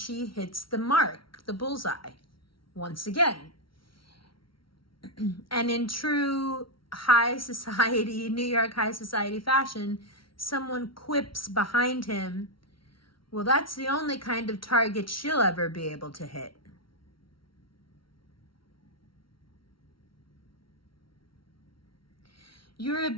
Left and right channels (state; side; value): late; right; 0.74 ms